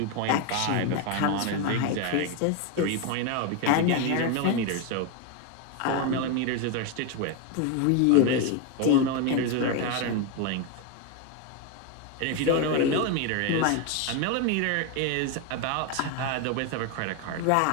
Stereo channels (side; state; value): both; different; correlation 0.02